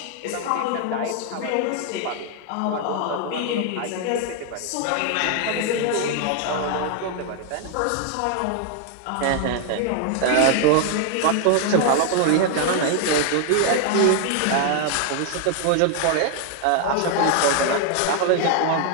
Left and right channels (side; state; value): both; different; correlation 0.00